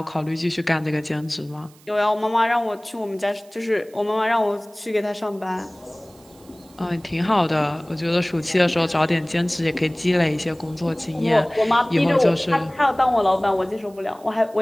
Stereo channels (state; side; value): noise; right; hiss, 27 dB below the sound